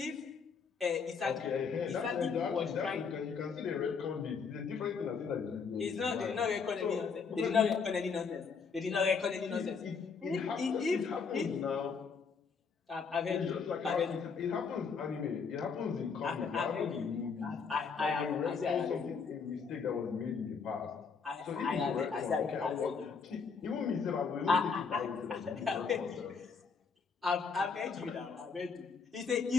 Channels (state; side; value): quieter; right; 5.5 dB